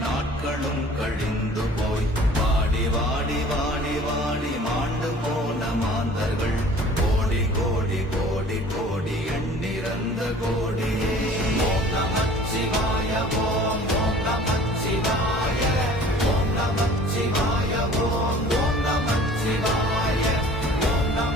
நாட்களும் கழிந்து போய் வாடி வாடி வாடி வாடி மாண்டு போன மாந்தர்கள் கோடி கோடி கோடி கோடி எண்ணிறந்த கோடியே. ஓம் நமச்சிவாய ஓம் ஓம் நமச்சிவாய ஓம் நமச்சிவாய ஓம் ஓம் நமச்சிவாய ஓம்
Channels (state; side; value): normal; both; correlation 0.48